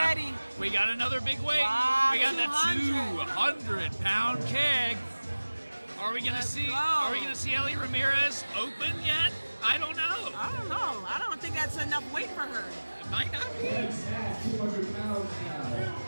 ready. We got another big weight. Wow, We got that 200. 200-pound keg. Are we gonna Let's see? go. Are we gonna see Ellie Ramirez open yet? I don't know. I don't know. I don't think that's enough weight for her. It might not be. 200 pounds now.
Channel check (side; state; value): both; inverted; correlation -1.00